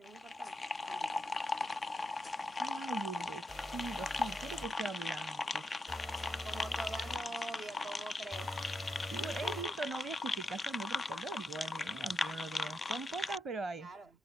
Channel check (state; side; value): normal; both; correlation 0.85